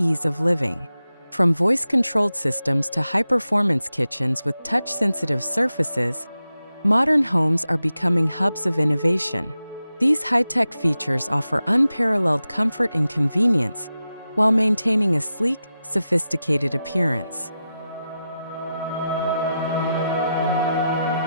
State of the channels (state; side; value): inverted; both; correlation -0.91